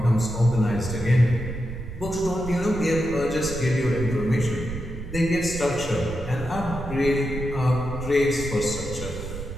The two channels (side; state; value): right; noise; rumble, 9 dB below the sound